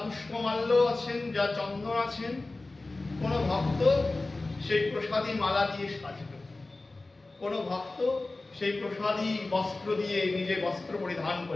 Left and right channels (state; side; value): quieter; right; 3.2 dB